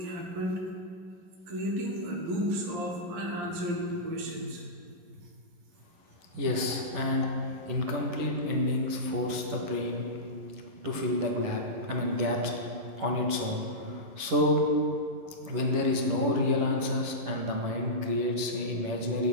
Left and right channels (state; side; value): late; left; 10 ms